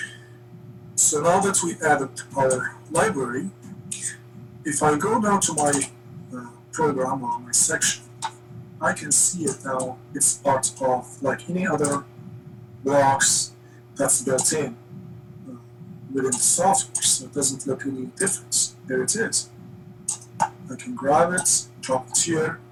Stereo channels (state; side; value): identical; both; correlation 1.00